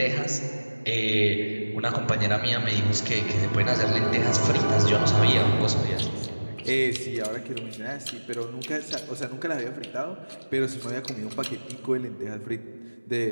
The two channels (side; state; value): both; inverted; correlation -1.00